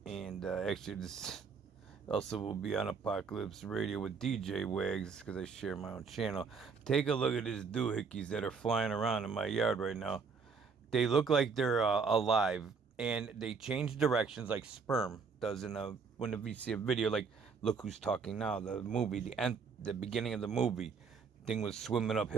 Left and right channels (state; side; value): quieter; left; 5.4 dB